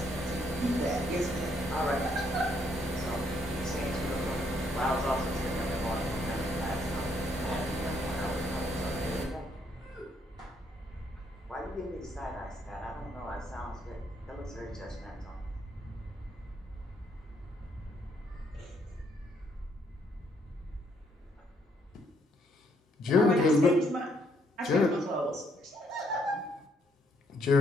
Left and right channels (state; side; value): normal; both; correlation 0.71